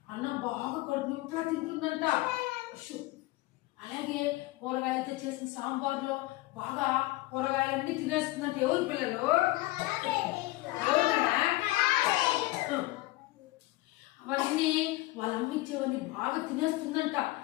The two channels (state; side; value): quieter; right; 19.5 dB